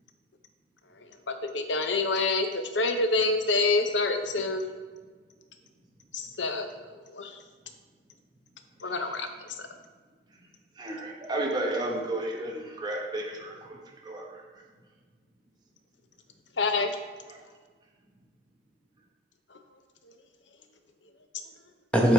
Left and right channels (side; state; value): both; normal; correlation 0.19